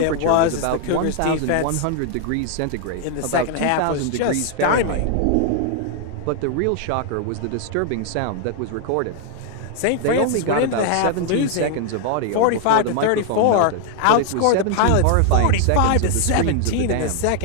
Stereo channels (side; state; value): both; different; correlation 0.00